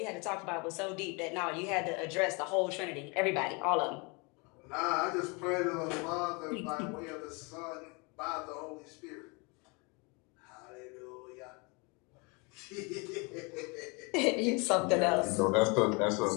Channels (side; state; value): right; quieter; 30.2 dB